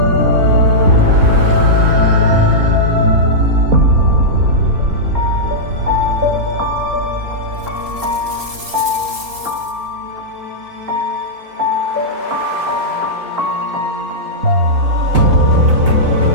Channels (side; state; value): left; late; 4.0 ms